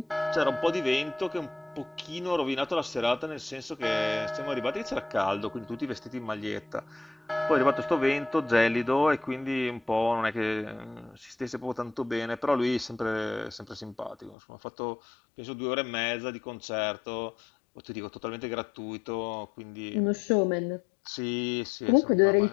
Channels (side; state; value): right; drops out; at 14.4 s